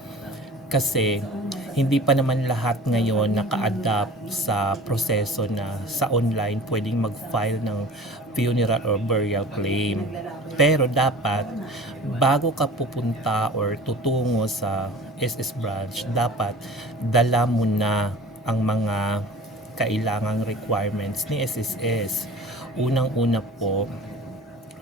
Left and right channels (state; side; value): normal; both; correlation 0.41